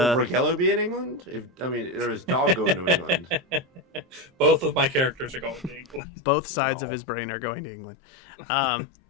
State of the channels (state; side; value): drops out; right; at 6.0 s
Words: Raquel be in England? Or is Dog going to England? Both of my characters are going to England. Both sides of his brain are going to England.